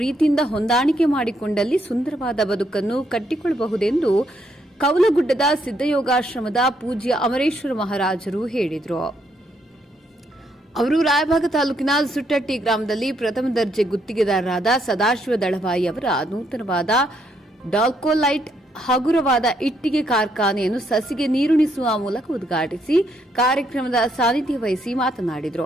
ಹೊಂದಾಣಿಕೆ ಮಾಡಿಕೊಂಡಲ್ಲಿ ಸುಂದರವಾದ ಬದುಕನ್ನು ಕಟ್ಟಿಕೊಳ್ಳಬಹುದೆಂದು ಕೌಲಗುಡ್ಡದ ಸಿದ್ದಯೋಗಾಶ್ರಮದ ಪೂಜ್ಯ ಅಮರೇಶ್ವರ ಮಹಾರಾಜರು ಹೇಳಿದರು. ಅವರು ರಾಯಬಾಗ ತಾಲೂಕಿನ ಸುಟ್ಟಟ್ಟಿ ಗ್ರಾಮದಲ್ಲಿ ಪ್ರಥಮ ದರ್ಜೆ ಗುತ್ತಿಗೆದಾರರಾದ ಸದಾಶಿವ ದಳವಾಯಿ ಅವರ ನೂತನವಾದ ಡಾಲ್ಕೋಲೈಟ್ ಹಗುರವಾದ ಇಟ್ಟಿಗೆ ಕಾರ್ಖಾನೆಯನ್ನು ಸಸಿಗೆ ನೀರುಣಿಸುವ ಮೂಲಕ ಉದ್ಘಾಟಿಸಿ ಕಾರ್ಯಕ್ರಮದ ಸಾನ್ನಿಧ್ಯ ವಹಿಸಿ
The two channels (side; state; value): both; normal; correlation 0.74